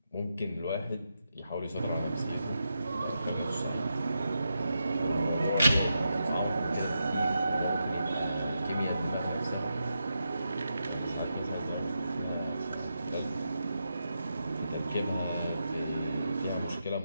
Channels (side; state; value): both; inverted; correlation -0.86